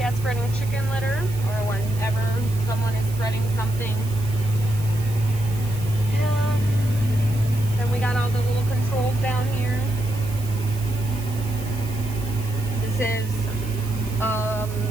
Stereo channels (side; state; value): right; noise; hiss, 16 dB below the sound